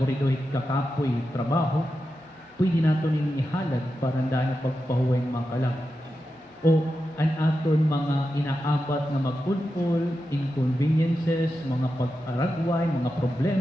kakapoy trabaho pwede naton ning ihalad para daan pagpahuway makalag o ang aton mga inaabat nga magpulpul, inconveniences, mga pag-aragway, mga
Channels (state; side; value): normal; both; correlation 0.89